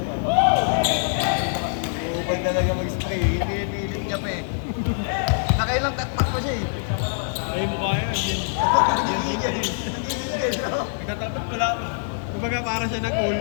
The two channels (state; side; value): silent; right; digital silence